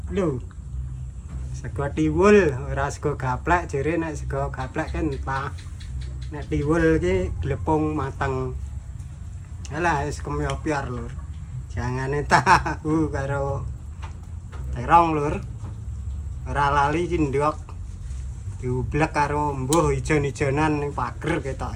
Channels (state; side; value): identical; both; correlation 1.00